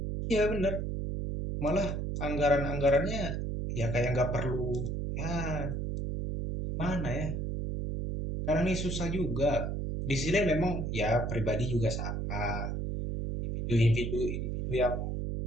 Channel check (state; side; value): noise; right; hum, 2 dB below the sound